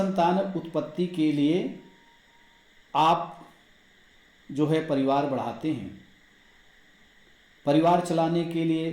उत्पत्ति के लिए आप जो है परिवार बढ़ाते हैं, परिवार चलाने के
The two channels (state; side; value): identical; both; correlation 1.00